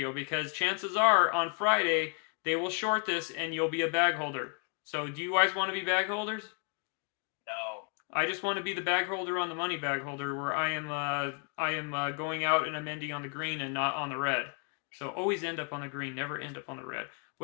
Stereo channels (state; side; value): quieter; right; 39.4 dB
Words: Because chances are, on Friday, they will short this and you'll be a bag holder. So do you guys want to be bag holders? No. I just want to be the bag holder on the money bag holder, where I am going out and I'm ending on the green and not on the red. So always end up on the green, never end up on the red.